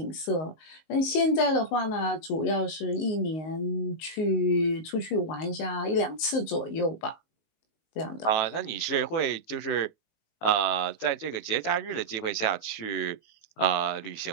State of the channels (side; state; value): right; late; 19 ms